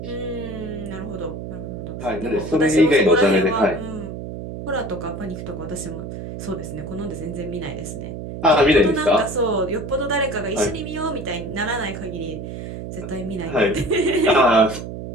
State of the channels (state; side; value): noise; right; hum, 8 dB below the sound